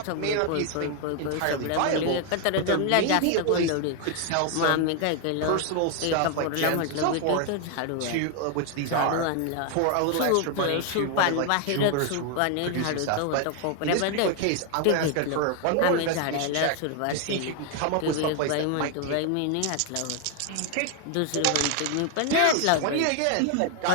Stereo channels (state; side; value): different; both; correlation 0.01